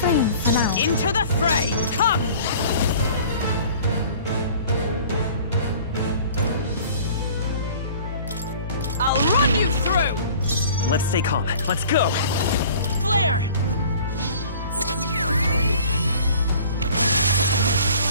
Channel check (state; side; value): inverted; both; correlation -0.48